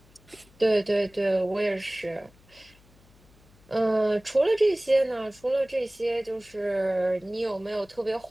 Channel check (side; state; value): left; noise; hum, 28 dB below the sound